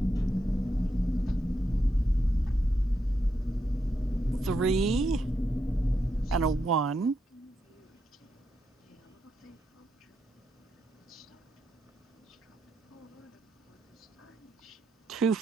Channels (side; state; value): both; normal; correlation 0.83